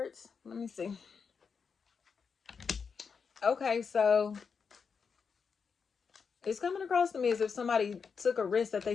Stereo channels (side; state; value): right; quieter; 5.8 dB